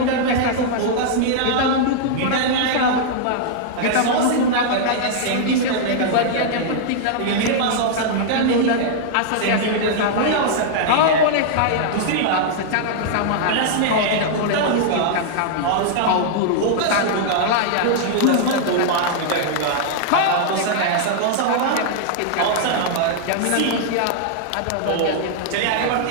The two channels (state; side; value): different; both; correlation -0.01